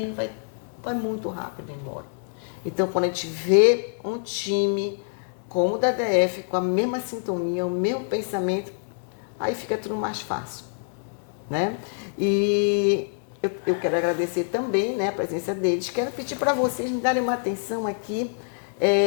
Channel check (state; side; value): silent; right; 61 dB below the other